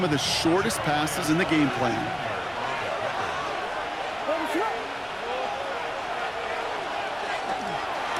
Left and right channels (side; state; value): both; identical; correlation 1.00